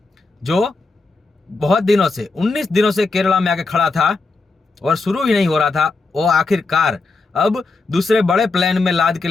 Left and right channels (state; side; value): quieter; right; 3.7 dB